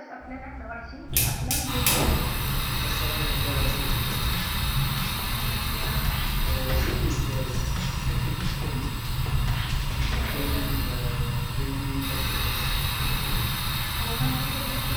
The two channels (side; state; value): both; identical; correlation 1.00